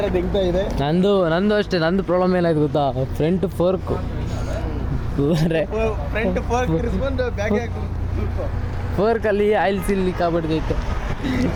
ದಿಗ್ತಾ ಇದೆ. ನಂದು ಅಷ್ಟೇ. ನಂದು ಪ್ರಾಬ್ಲಮ್ ಏನಾಯ್ತು ಗೊತ್ತಾ? ಫ್ರಂಟ್ ಫೋರ್ಕು ಫ್ರಂಟ್ ಫೋರ್ಕ್ ತಿರ್ಸ್ಕೊಂಡು ಬ್ಯಾಗ್ ಫೋರ್ಕಲ್ಲಿ ಆಯಿಲ್ ಸೀಲ್ ಲೀಕ್ ಆಗ್ಬಿಡ್ತೈತೆ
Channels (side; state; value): both; identical; correlation 1.00